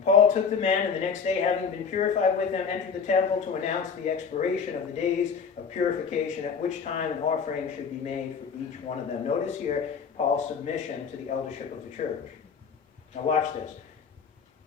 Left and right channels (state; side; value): quieter; right; 6.1 dB